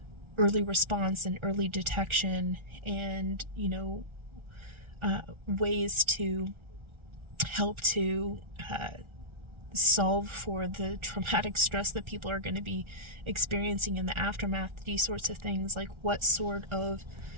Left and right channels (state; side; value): late; left; 1.4 ms